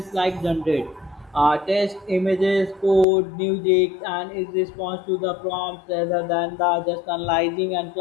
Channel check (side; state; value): right; drops out; at 3.1 s